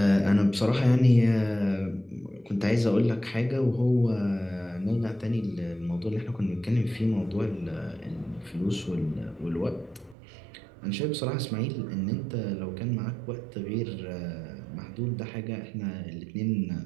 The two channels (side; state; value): left; drops out; at 10.2 s